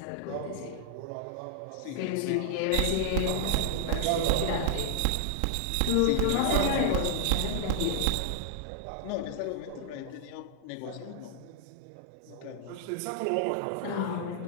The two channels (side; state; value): both; different; correlation -0.01